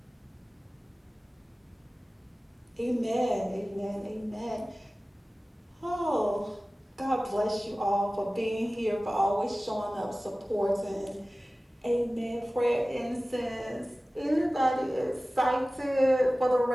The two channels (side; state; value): both; normal; correlation 0.97